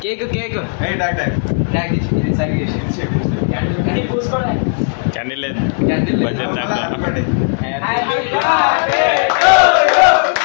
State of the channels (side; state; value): right; silent; digital silence